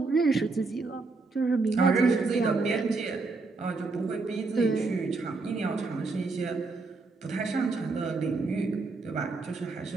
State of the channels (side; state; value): left; quieter; 3.8 dB